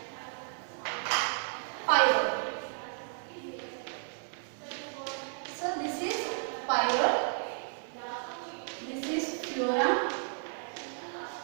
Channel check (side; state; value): left; silent; 56 dB below the other